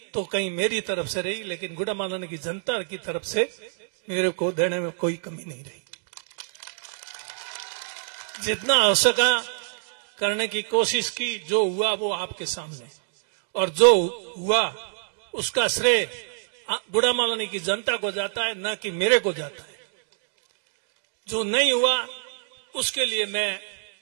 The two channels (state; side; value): silent; left; digital silence